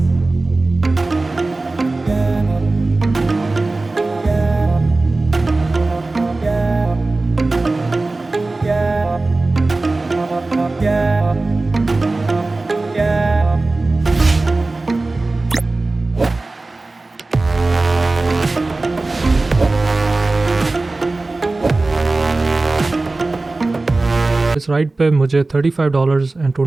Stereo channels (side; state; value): left; quieter; 3.2 dB